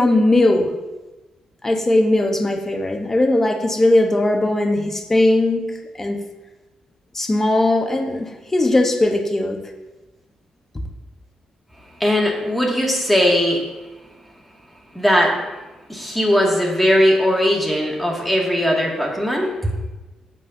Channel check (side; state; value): both; normal; correlation 0.90